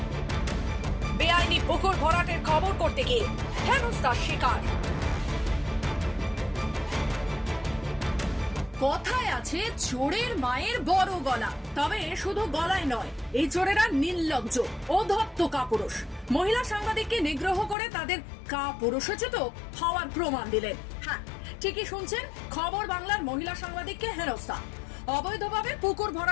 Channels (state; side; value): drops out; right; at 17.8 s